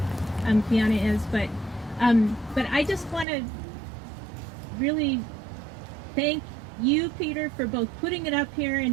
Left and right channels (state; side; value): drops out; left; at 3.2 s